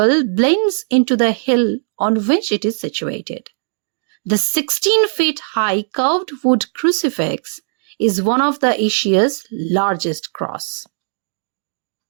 blends into the hill on which it is situated. The 16 feet high curved wood crucifix is one of the Asia's largest cross.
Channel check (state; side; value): silent; left; 67 dB below the other